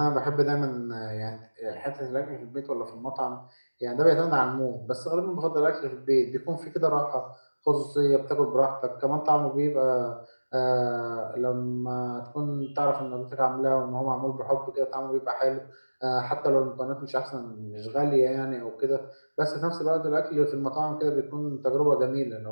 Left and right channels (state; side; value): inverted; both; correlation -1.00